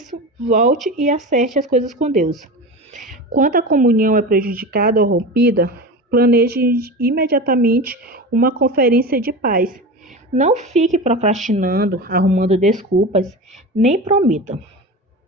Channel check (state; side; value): normal; both; correlation 0.28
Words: volte e acerte as coisas com Deus. Quando a comunhão é prejudicada ou rompida, planeje imediatamente uma conferência de paz. Não fique procrastinando, arrumando desculpas, nem prometa.